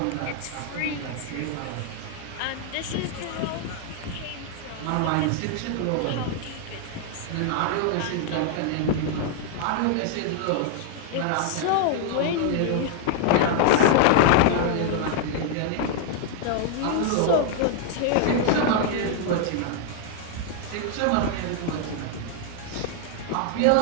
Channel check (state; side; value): different; both; correlation 0.00